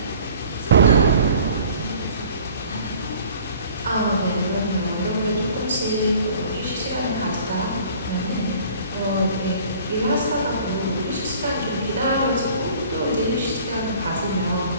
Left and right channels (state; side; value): inverted; both; correlation -0.50